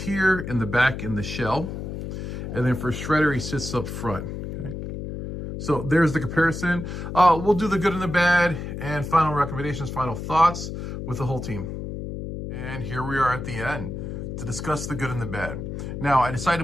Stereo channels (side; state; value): left; noise; hum, 6 dB below the sound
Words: in the back in the shell. And then for Shredder, he sits up front. Okay, so there's the comparison. We'll do the good and the bad and final recommendations, final thoughts with the whole team. And here we are at the end to discuss the good and the bad. Now, I decided